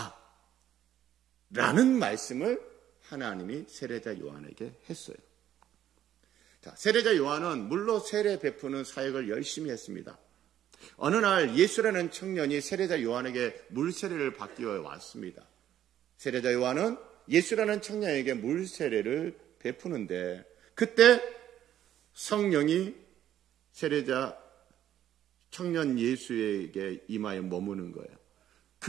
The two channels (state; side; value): quieter; left; 11.3 dB